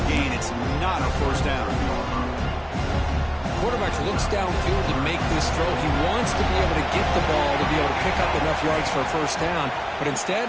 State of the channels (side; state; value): both; identical; correlation 1.00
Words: gain. It's not a first down. Quarterback looks downfield to make this throw. He wants to be able to get the ball to be able to pick up enough yards for a first down. But instead,